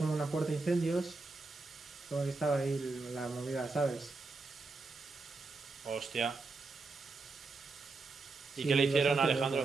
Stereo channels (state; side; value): quieter; left; 3.8 dB